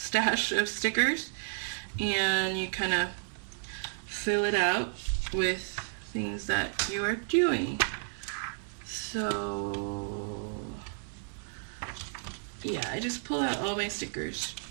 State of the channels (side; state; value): left; silent; 56 dB below the other